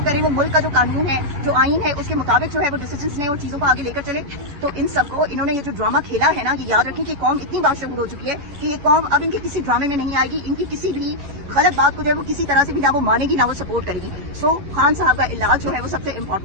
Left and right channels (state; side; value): late; left; 11 ms